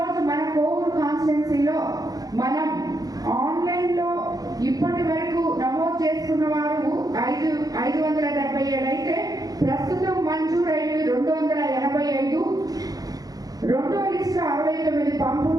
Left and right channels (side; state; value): left; late; 0.18 ms